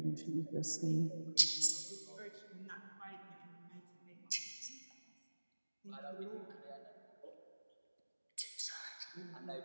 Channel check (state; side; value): inverted; both; correlation -1.00